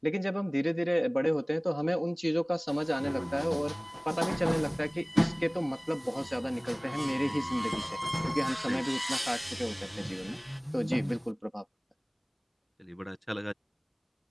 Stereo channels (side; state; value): both; identical; correlation 1.00